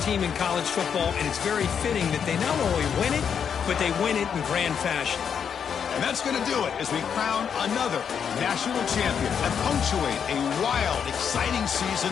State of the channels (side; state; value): right; quieter; 7.4 dB